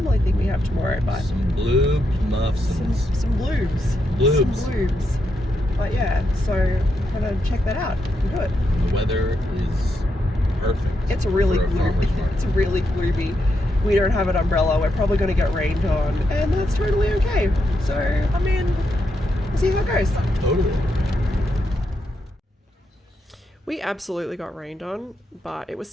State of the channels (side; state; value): both; normal; correlation 0.82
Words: thing we have tomorrow. But some blue muffins. Some bloobs. Some bloobs. But yeah, so I'm going to check that out and do it. The weather is perfect. It's really gloomy. It's really gloomy. We don't have an umbrella. We're probably going to get rained on, and that's totally okay. So, I mean, we'll see how it goes. Totally. We absolutely got rained on, but it was